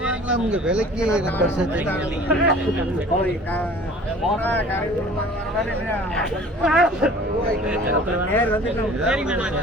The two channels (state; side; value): normal; both; correlation 0.47